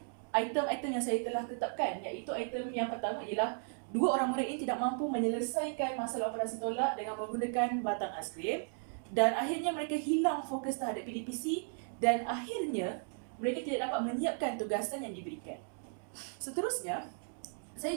item-item yang saya telah tetapkan, iaitu item yang pertama ialah dua orang murid ini tidak mampu menyelesaikan masalah operasi tolak dengan menggunakan batang aiskrim, dan akhirnya mereka hilang fokus terhadap PDPC dan akhirnya mereka tidak dapat menyiapkan tugasan yang diberikan. Seterusnya,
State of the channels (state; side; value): silent; left; 54 dB below the other